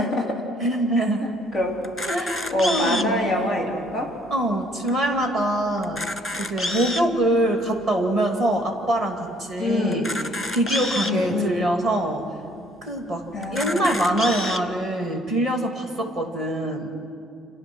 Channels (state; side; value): normal; both; correlation 0.62